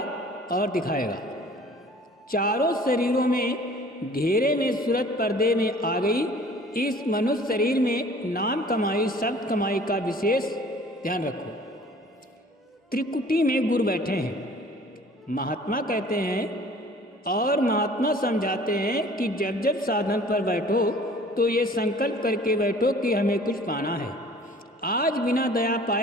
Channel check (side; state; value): both; normal; correlation 0.50